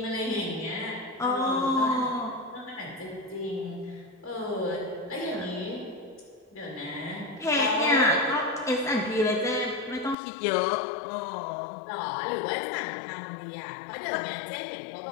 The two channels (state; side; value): drops out; right; at 10.2 s